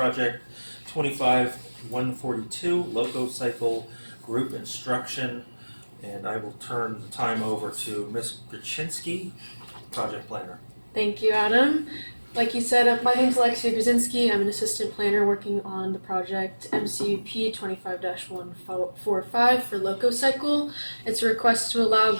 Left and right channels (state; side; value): inverted; both; correlation -1.00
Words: 25-142, Loco Cycle Group Instruction, and I will turn the time over to Ms. Graczynski, project planner. Thank you, Adam. Like you said, my name is Alexia Grzyński. I'm an assistant planner working on the project MCUP 25-145 for Loco Cycle. It's a request to allow